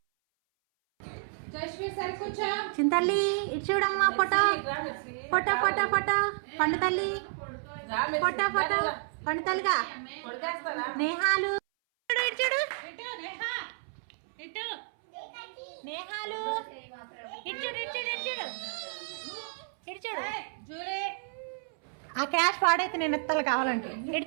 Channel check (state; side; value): silent; left; 57 dB below the other